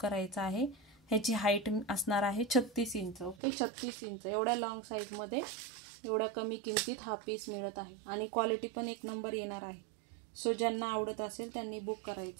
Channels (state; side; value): drops out; left; at 3.4 s